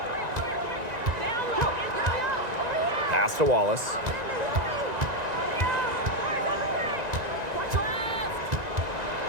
Pass to Wallace.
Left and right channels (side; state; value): left; late; 1.9 ms